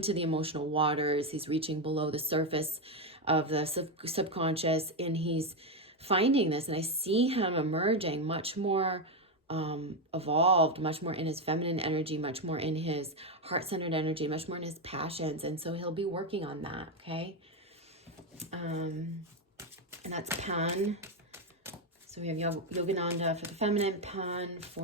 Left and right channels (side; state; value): both; normal; correlation 0.07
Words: the emotional waters. He's reaching below the surface of the subconscious, and he's finding this. And I see him emerging much more evolved, much more in his feminine energy, much more in his heart-centered energy, much more in his passions. And so he'll be working on that, okay? And that's Pan. So we have Yogananda for the feminine, Pan